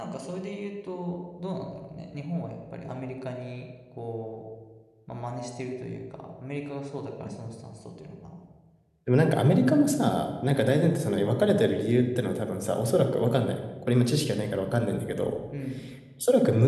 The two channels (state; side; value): identical; both; correlation 1.00